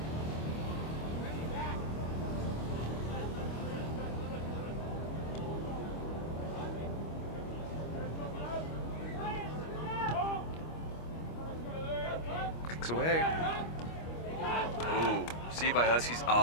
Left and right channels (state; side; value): late; right; 25 ms